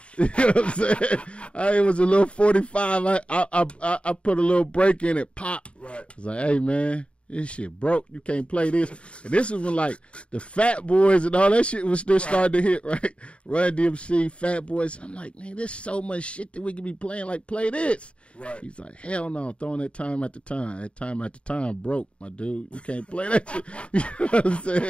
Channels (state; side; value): late; right; 0.059 ms